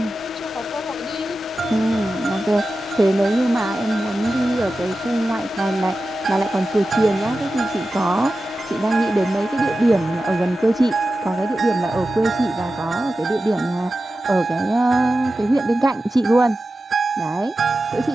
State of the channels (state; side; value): normal; both; correlation 0.93